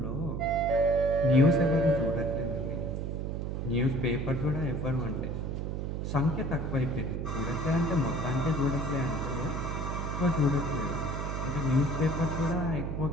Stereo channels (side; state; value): right; noise; hum, 3 dB below the sound